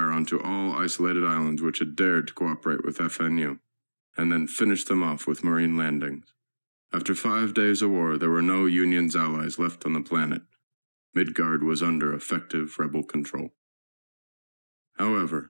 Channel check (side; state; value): both; inverted; correlation -1.00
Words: onto all isolated islands which had dared to cooperate with FNU, and then finished them off with marine landings. After 5 days of war, there were no Union's allies left on the planet. Midgard was under effective rebel control.